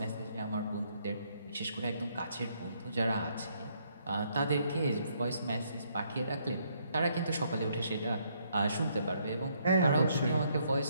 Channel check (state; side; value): inverted; both; correlation -0.71